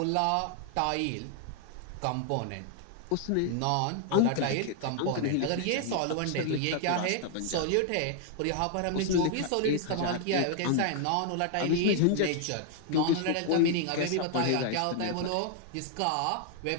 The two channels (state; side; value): different; both; correlation 0.00